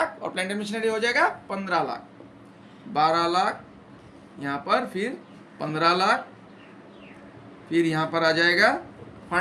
और प्लांट एंड मशीनरी हो जाएगा 15 लाख। 12 लाख यहाँ पर, फिर 15 लाख, फिर यहाँ पर आ जाएगा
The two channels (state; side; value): identical; both; correlation 1.00